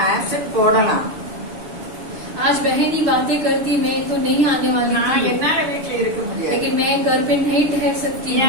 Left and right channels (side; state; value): left; late; 6.4 ms